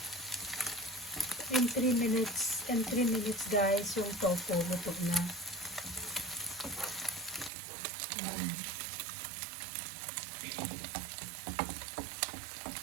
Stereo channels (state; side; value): drops out; left; at 7.5 s